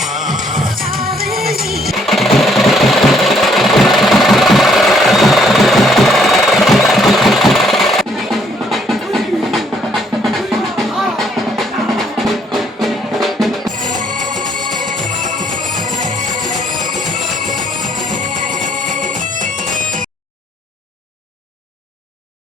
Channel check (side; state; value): both; normal; correlation 0.67